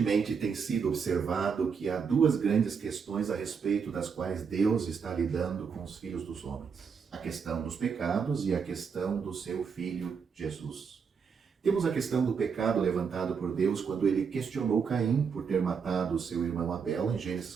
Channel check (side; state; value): left; quieter; 6.1 dB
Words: tem sido observado que há duas grandes questões a respeito das quais Deus está lidando com os filhos dos homens: a questão dos pecados e a questão do seu Filho Jesus. Temos a questão do pecado levantado por Deus quando ele questionou Caim por ter matado seu irmão Abel, em Gênesis